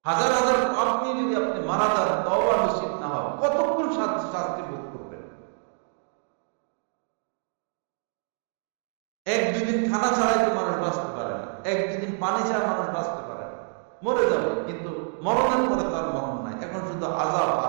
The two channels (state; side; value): silent; left; 61 dB below the other